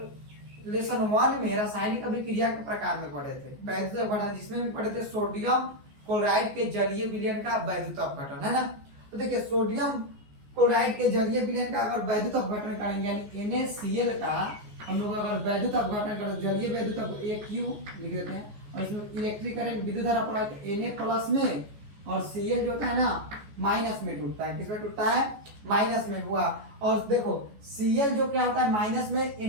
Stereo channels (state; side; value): late; left; 14 ms